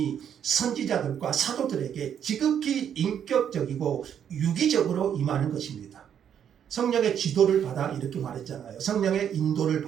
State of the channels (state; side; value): quieter; left; 8.9 dB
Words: 선지자들과 사도들에게 지극히 인격적이고 유기적으로 임하는 것입니다. 성령의 지도를 받아 이렇게 말했잖아요. 성령의 인도를